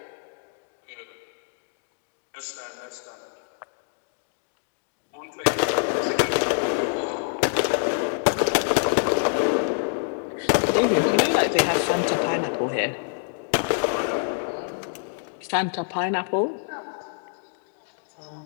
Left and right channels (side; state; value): right; silent; digital silence